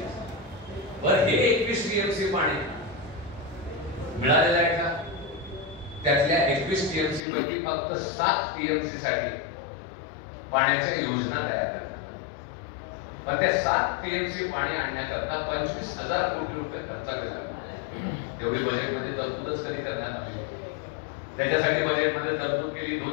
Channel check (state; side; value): drops out; right; at 7.2 s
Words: बरं, हे 21 टीएमसी पाणी मिळालेलं आहे का? त्यातल्या 21 टीएमसी पैकी फक्त 7 टीएमसी साठी पाण्याच्या योजना तयार करतात. पण त्या 7 टीएमसी पाणी आणण्याकरता 25,000 कोटी रुपये खर्च केला. तेवढी बजेटमध्ये तरतूदच कधी करण्यात आली. त्याच्यासाठी बजेटमध्ये तरतूद केली